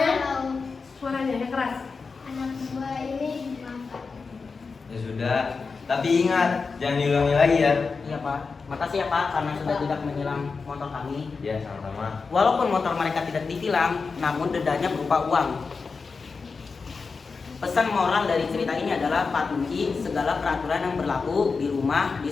tahu Suaranya yang keras. anak dua ini dimakan. Ya sudah, tapi ingat, jangan diulangi lagi ya. Iya, Pak. Makasih ya, Pak, karena sudah tidak menilang motor kami. Ya, sama-sama. Walaupun motor mereka tidak ditilang, namun dendanya berupa uang. Pesan moral dari cerita ini adalah patuhi segala peraturan yang berlaku di rumah, di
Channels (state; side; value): quieter; right; 4.7 dB